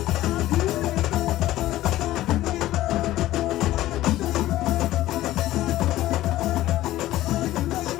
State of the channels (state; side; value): quieter; right; 15.2 dB